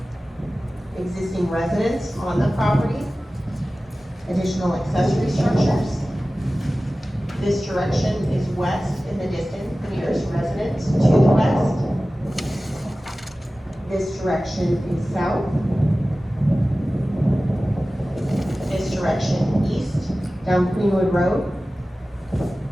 Existing residents on the property, additional accessory structures. This direction is west in the distance, the nearest resident to the west. This direction is south. This direction east, down Greenwood Road,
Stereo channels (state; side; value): normal; both; correlation 0.96